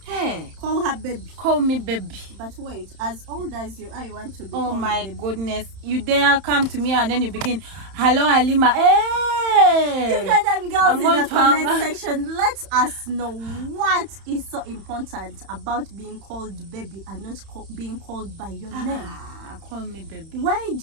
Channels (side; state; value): left; late; 31 ms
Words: Hey, Call her baby. call me baby. But wait, as old as you are, you want to be Oh called my baby. goodness. You dare come to me and then you begin, hello Halima. Hey! Ugandan girls I'm in going the to hang- comment section, let us know what is so important about being called baby and not being called by your name. Call me baby. Why